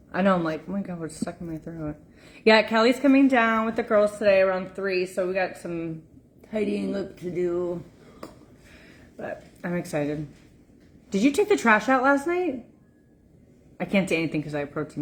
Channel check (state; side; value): identical; both; correlation 1.00